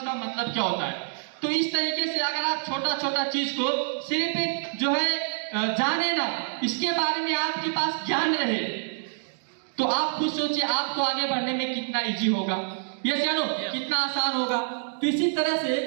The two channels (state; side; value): silent; left; digital silence